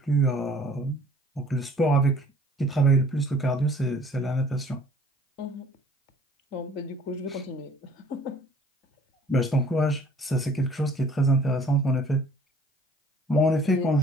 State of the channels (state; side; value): normal; both; correlation 0.54